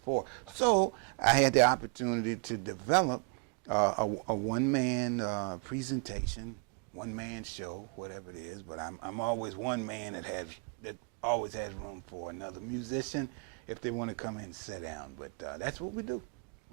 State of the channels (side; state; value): left; quieter; 35.0 dB